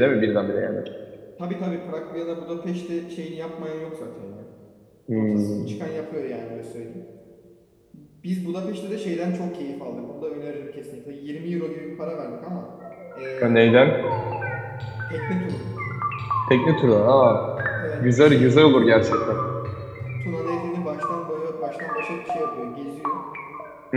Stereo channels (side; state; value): both; identical; correlation 1.00